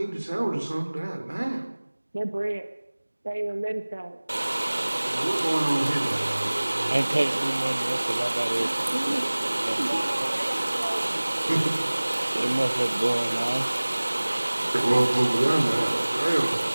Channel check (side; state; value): both; inverted; correlation -1.00